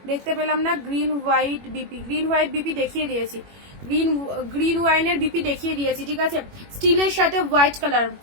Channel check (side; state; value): left; late; 21 ms